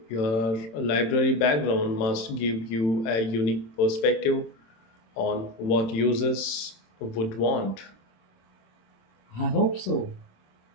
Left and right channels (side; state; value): right; late; 26 ms